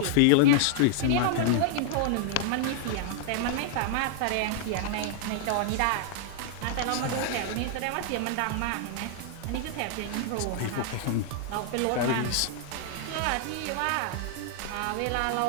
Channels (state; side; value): different; both; correlation -0.01